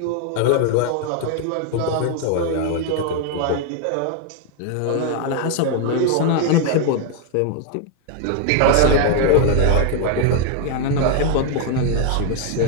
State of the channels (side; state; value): both; different; correlation 0.00